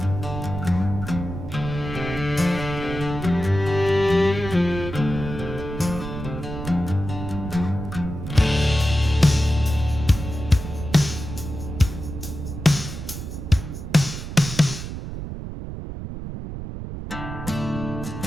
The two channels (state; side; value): noise; right; rumble, 8 dB below the sound